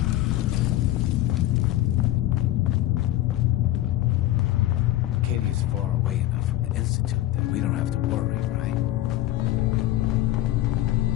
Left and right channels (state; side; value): quieter; right; 14.9 dB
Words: Acadia's far away enough from the Institute that we don't have to worry, right?